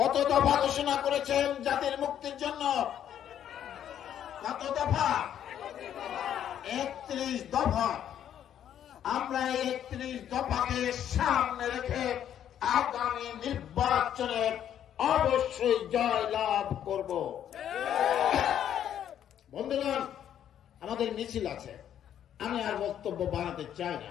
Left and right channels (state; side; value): quieter; right; 10.1 dB